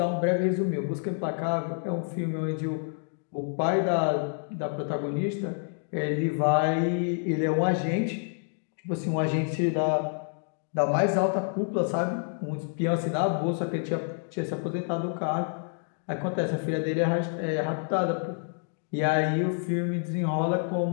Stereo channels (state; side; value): silent; right; 59 dB below the other